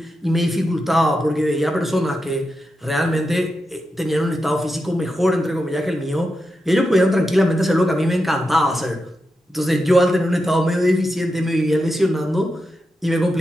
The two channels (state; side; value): normal; both; correlation 0.88